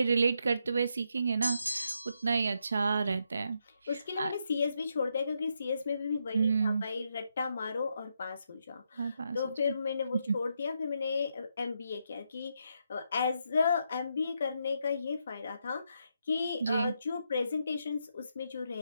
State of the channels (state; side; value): inverted; both; correlation -0.80